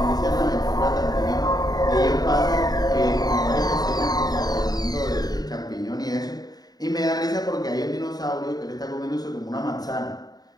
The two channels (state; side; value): late; right; 0.19 ms